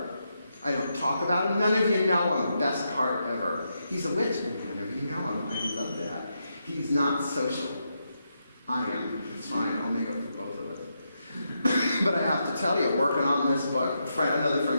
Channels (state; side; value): inverted; both; correlation -0.83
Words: I don't talk about him. None of you know him. Best part ever. He's a witch, and none of you know him. I love that. He's not social. I am. It's fine. I'll make up for both of us. But I have to tell you, working on this book, another